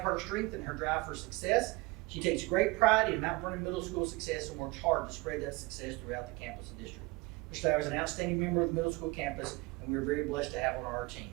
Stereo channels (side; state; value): left; quieter; 23.9 dB